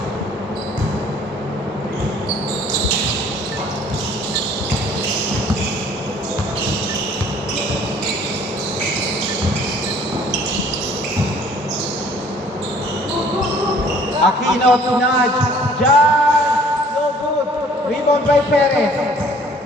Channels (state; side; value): normal; both; correlation 0.55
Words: Aquino to nudge. Jan, no good. Rebound by Perez.